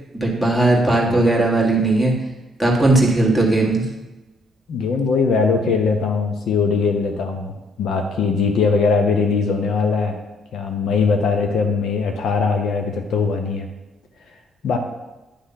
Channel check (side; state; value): both; normal; correlation 0.66